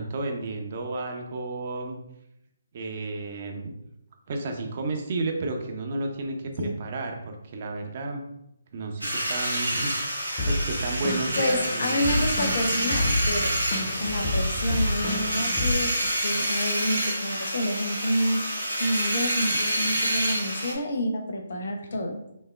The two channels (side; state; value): both; inverted; correlation -0.80